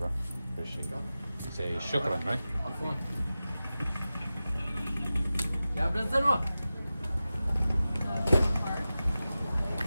Appreciate it. Say shukran, right? عفوا. يا ابن الزنوة.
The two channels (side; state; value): both; inverted; correlation -0.95